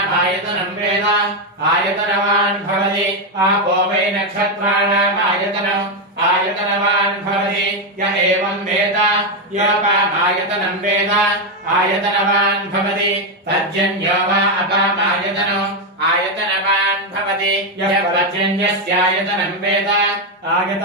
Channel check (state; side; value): normal; both; correlation 0.05